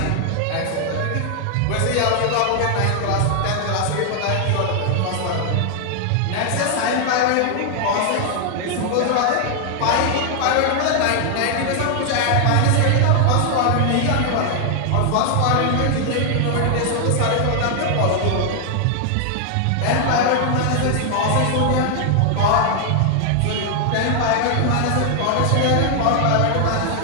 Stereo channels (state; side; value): different; both; correlation 0.00